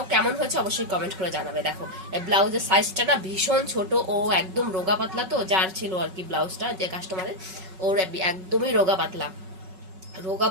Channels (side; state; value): left; late; 5.3 ms